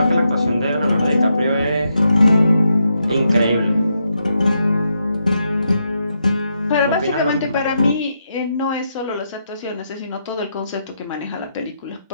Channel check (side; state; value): both; inverted; correlation -0.82